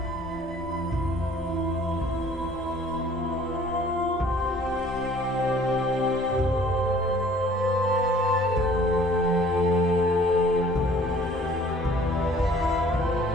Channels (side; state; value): both; normal; correlation 0.54